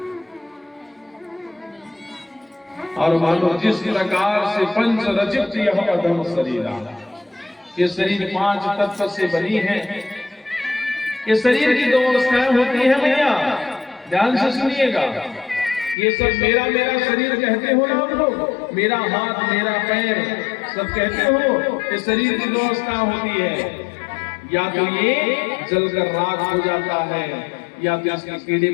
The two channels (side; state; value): right; drops out; at 16.0 s